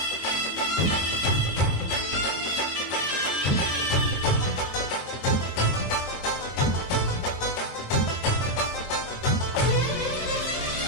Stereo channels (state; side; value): late; right; 22 ms